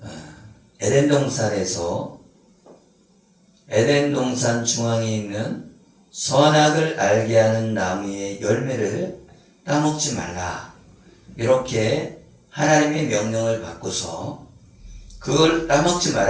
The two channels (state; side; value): identical; both; correlation 1.00